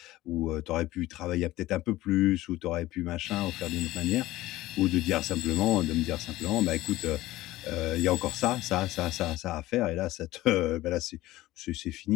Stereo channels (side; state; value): right; quieter; 17.0 dB